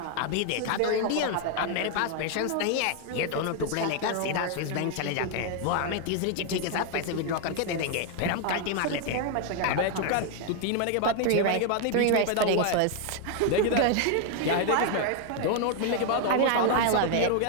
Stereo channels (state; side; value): different; both; correlation 0.00